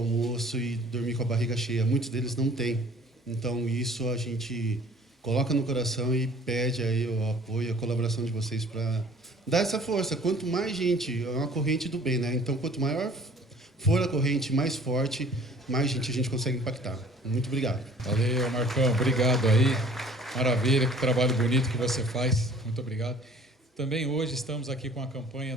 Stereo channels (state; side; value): normal; both; correlation 0.51